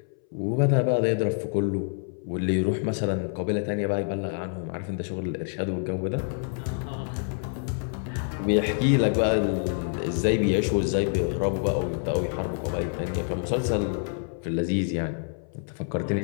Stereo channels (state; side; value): silent; right; 60 dB below the other